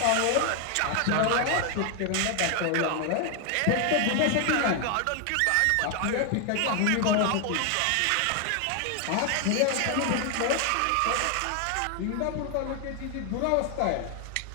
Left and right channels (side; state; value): both; different; correlation 0.00